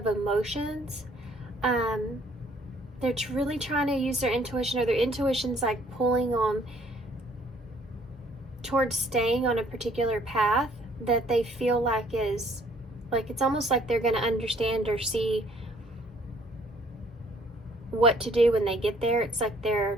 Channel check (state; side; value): normal; both; correlation 0.61